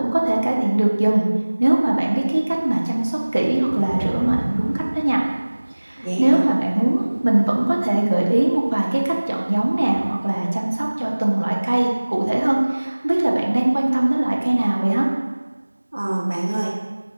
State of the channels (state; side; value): inverted; both; correlation -1.00